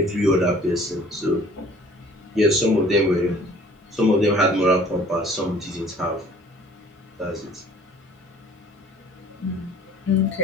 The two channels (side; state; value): both; normal; correlation 0.52